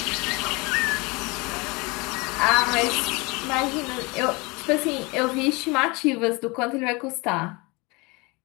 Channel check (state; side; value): quieter; right; 26.6 dB